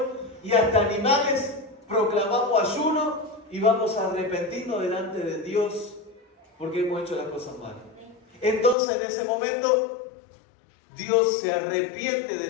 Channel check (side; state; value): right; drops out; at 8.8 s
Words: y hasta animales, proclamamos ayuno y vamos a arrepentirnos delante de Dios porque hemos hecho las cosas mal. Entonces en ese momento Dios se arrepiente